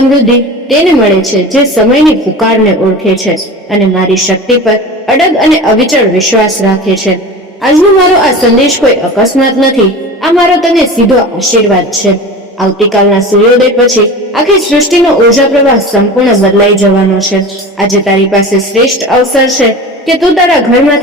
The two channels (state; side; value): normal; both; correlation 0.33